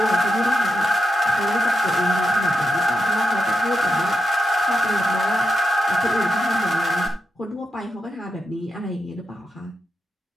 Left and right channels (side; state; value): both; normal; correlation 0.85